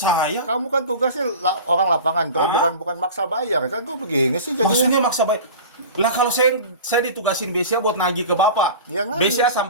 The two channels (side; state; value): both; inverted; correlation -0.35